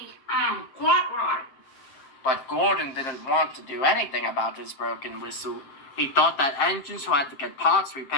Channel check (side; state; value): right; late; 7.6 ms